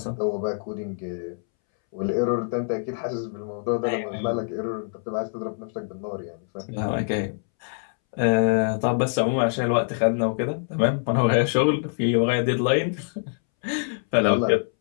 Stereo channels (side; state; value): right; silent; 62 dB below the other